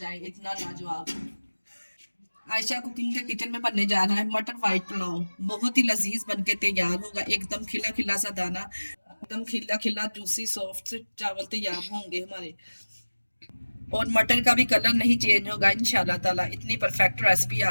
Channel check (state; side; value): inverted; both; correlation -1.00